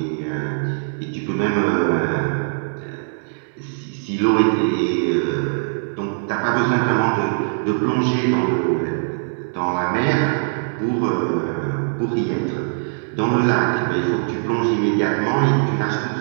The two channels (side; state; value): left; silent; digital silence